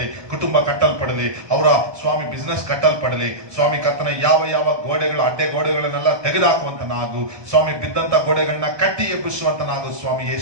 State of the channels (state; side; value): late; left; 1.2 ms